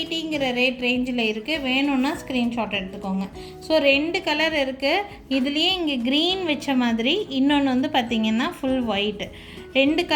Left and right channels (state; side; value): identical; both; correlation 1.00